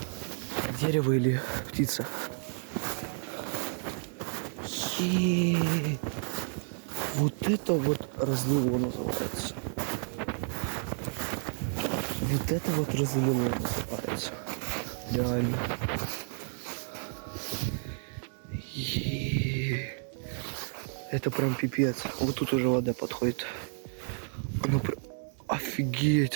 Дерево или птица. Вот это вот разлило называется. Вот это вот разлило называется. Реально. Это прям пипец. Вот тут уже вода подходит. Она прям...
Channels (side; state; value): left; silent; 57 dB below the other